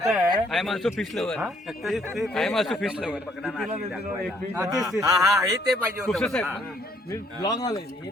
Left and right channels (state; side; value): normal; both; correlation 0.66